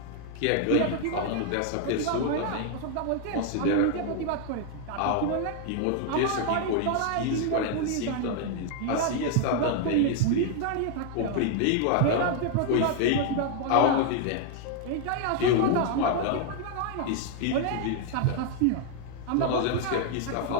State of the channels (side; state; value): both; different; correlation 0.00